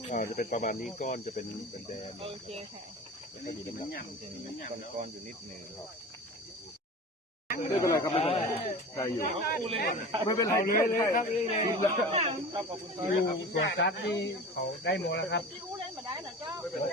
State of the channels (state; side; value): normal; both; correlation 0.35